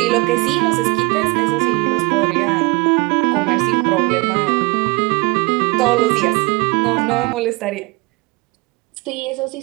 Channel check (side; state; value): left; quieter; 24.8 dB